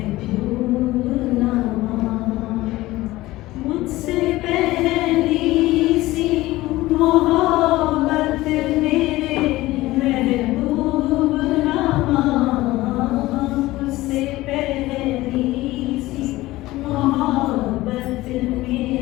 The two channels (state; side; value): quieter; right; 17.9 dB